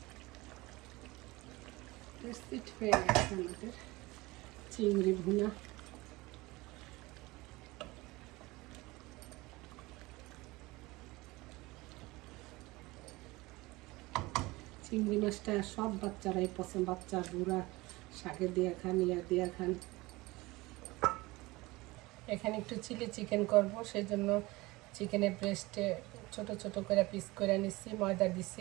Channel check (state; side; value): quieter; left; 21.4 dB